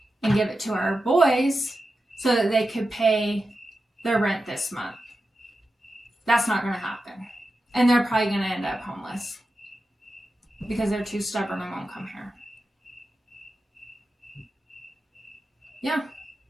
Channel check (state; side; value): normal; both; correlation 0.91